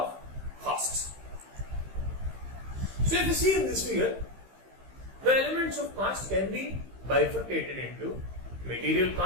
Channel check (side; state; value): left; late; 15 ms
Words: costs. So if you see in this figure, the elements of cost can be bifurcated into material